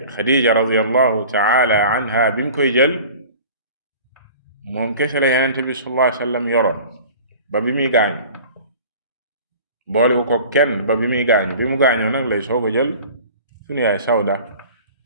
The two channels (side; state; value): both; inverted; correlation -0.43